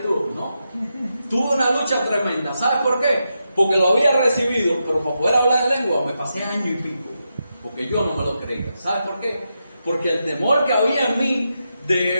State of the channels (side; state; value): both; inverted; correlation -0.86